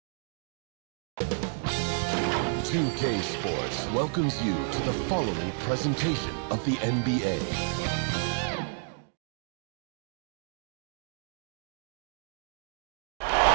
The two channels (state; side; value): silent; left; 57 dB below the other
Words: K Sports welcomes you to the following presentation of the NBA.